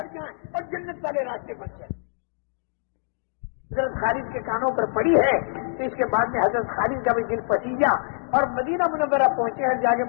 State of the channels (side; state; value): right; silent; digital silence